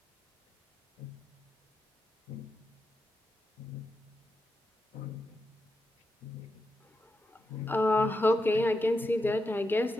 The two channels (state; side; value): normal; both; correlation 0.87